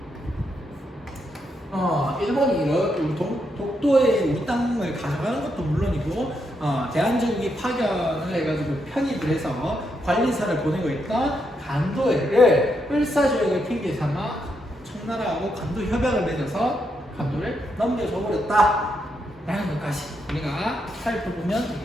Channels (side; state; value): both; normal; correlation 0.80